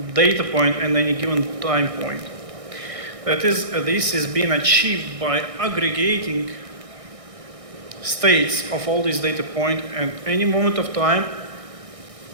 data point at any given time point. That is, this is being achieved by aggregating states of all these data points at any moment of time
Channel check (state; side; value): late; left; 1.6 ms